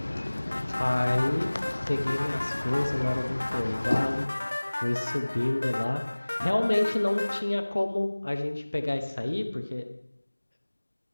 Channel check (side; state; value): both; inverted; correlation -1.00